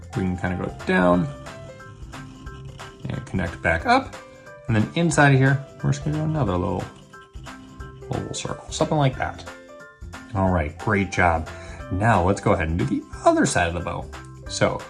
we can kind of go down and connect back up. And then inside of here, we're just gonna do another little circle, something like that. All right, great job. Now let's go ahead and do the other side of the bow. So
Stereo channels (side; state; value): both; identical; correlation 1.00